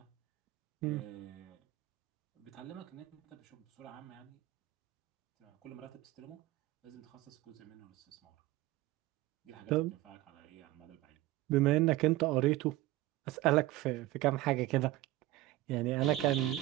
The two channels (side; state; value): left; quieter; 16.9 dB